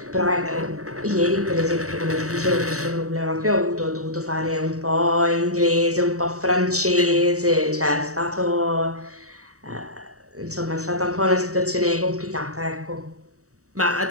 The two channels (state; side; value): late; left; 0.65 ms